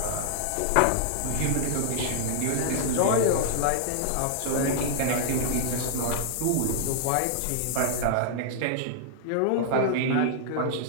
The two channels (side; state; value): both; different; correlation -0.01